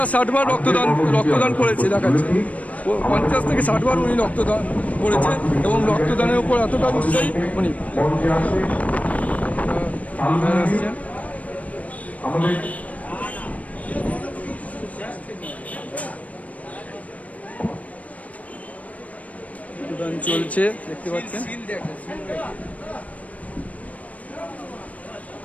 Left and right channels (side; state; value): right; late; 0.069 ms